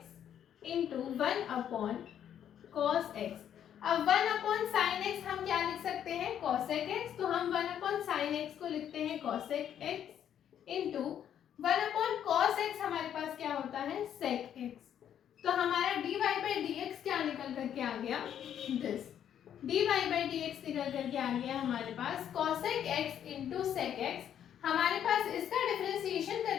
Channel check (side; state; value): right; quieter; 9.7 dB